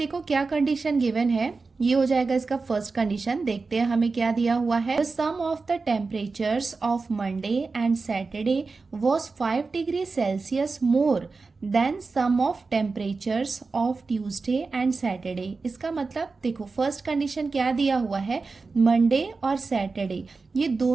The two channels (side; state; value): left; quieter; 4.2 dB